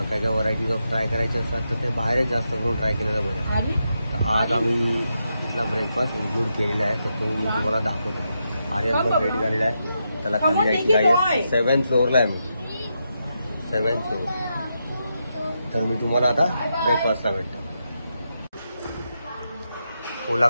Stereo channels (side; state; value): both; inverted; correlation -0.84